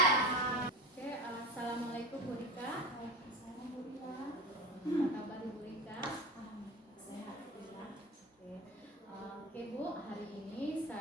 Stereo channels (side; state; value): both; normal; correlation 0.28